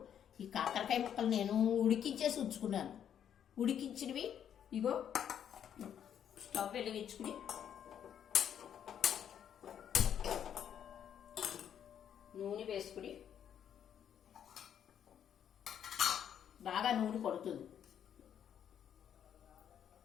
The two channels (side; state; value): right; quieter; 9.2 dB